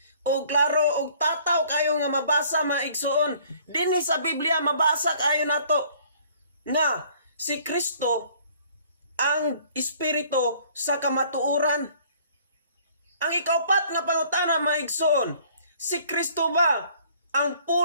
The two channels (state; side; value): inverted; both; correlation -0.56